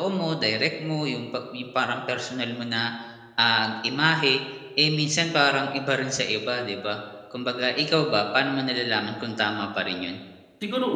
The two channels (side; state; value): both; identical; correlation 1.00